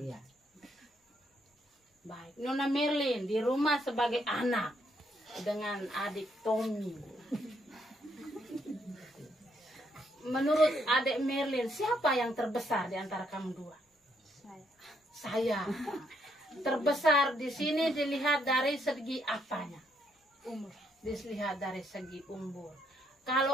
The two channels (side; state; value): both; normal; correlation 0.73